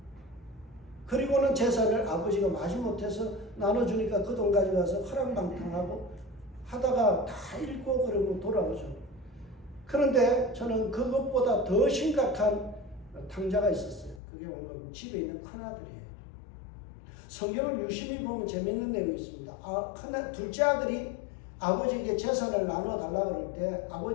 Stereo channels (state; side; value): drops out; right; at 14.2 s